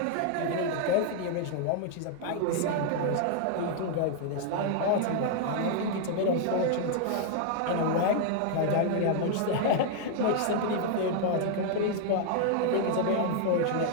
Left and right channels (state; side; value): different; both; correlation -0.01